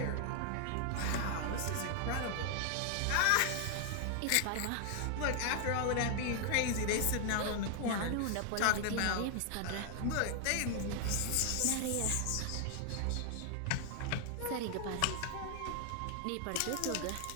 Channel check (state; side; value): different; both; correlation 0.00